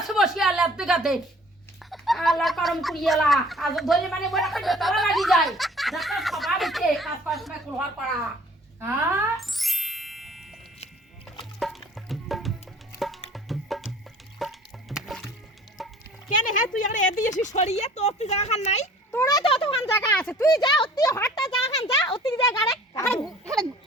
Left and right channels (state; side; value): normal; both; correlation 0.50